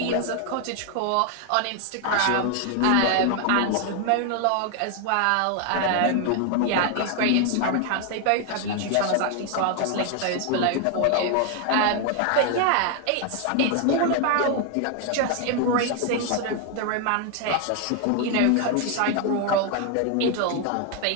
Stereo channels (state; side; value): different; both; correlation 0.00